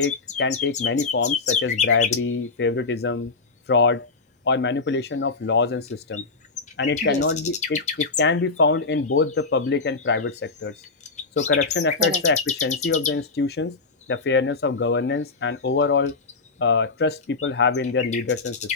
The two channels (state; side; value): quieter; right; 4.1 dB